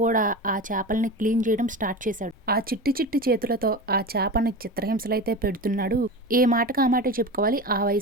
కూడా ఆ చేపల్ని క్లీన్ చేయడం స్టార్ట్ చేశాడు. ఆ చిట్టి చిట్టి చేతులతో ఆ చేపని చిత్రహింసలైతే పెడుతున్నాడు. ఏ మాటకు ఆ మాట చెప్పుకోవాలి. ఆ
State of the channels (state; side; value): normal; both; correlation 0.28